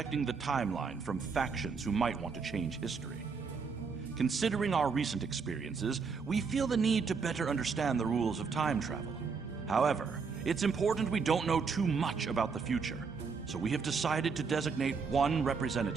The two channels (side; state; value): left; quieter; 5.3 dB